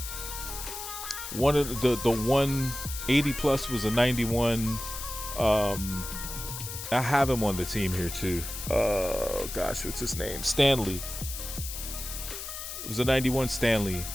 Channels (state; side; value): noise; left; hiss, 8 dB below the sound